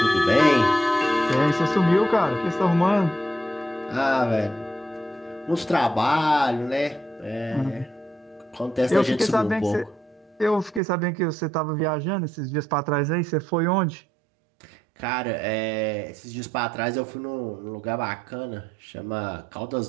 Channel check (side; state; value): left; drops out; at 10.8 s